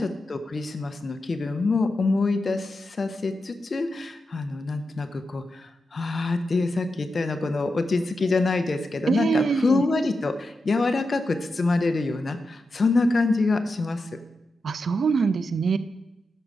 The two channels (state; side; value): normal; both; correlation 0.88